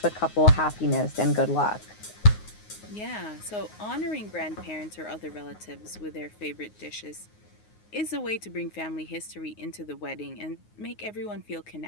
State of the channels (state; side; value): late; right; 9.5 ms